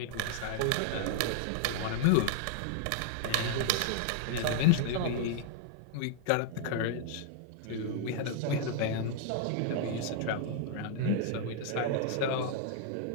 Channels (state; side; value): different; both; correlation -0.01